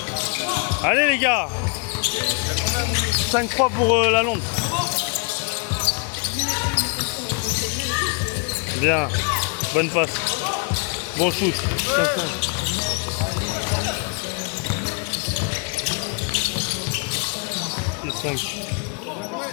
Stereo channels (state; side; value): quieter; right; 36.6 dB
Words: Allez les gars. 5-3 pour la Londres. Bien. Bonne passe. Bon shoot. 5.